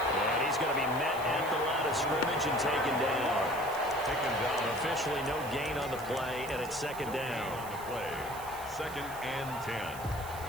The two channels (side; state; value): right; noise; hiss, 15 dB below the sound